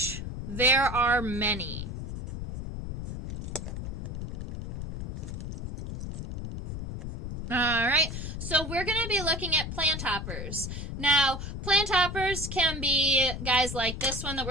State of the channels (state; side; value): noise; left; rumble, 6 dB below the sound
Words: there are many. Alright, so we're going to be looking at plant hoppers. Now, plant hoppers can be guys like this one that